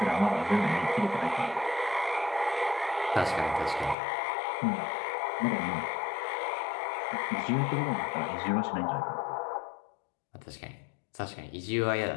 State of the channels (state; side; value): drops out; right; at 4.0 s